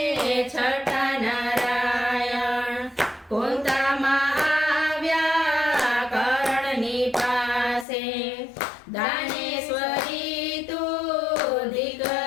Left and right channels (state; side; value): drops out; right; at 7.9 s